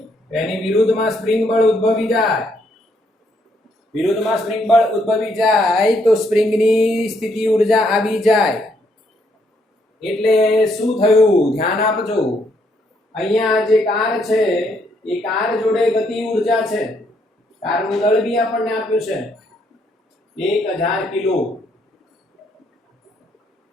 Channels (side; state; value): both; normal; correlation 0.72